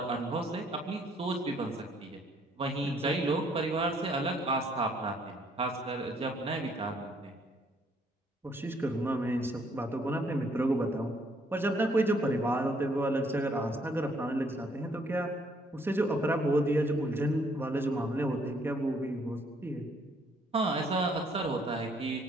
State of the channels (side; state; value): both; normal; correlation 0.67